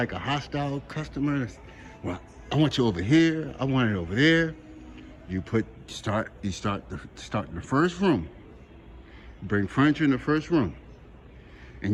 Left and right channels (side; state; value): both; identical; correlation 1.00